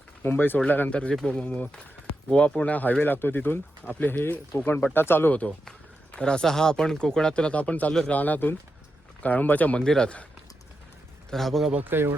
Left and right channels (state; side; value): normal; both; correlation 0.87